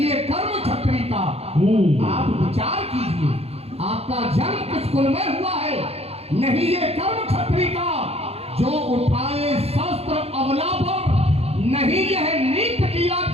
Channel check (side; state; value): left; late; 0.29 ms